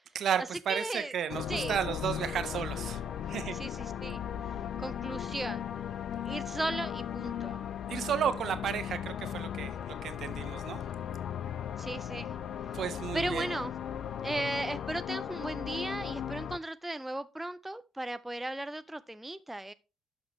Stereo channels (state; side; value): normal; both; correlation 0.70